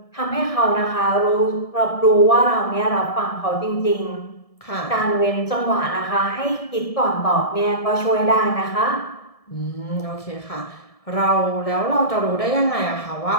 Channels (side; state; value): right; late; 1.7 ms